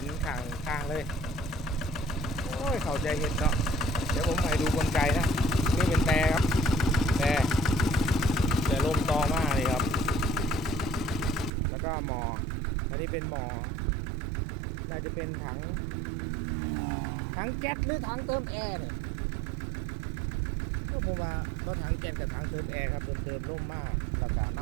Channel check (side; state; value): left; drops out; at 11.5 s